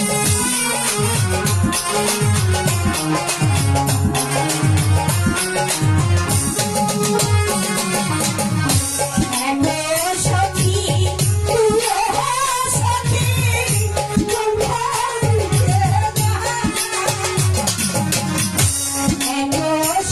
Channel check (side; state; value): both; identical; correlation 1.00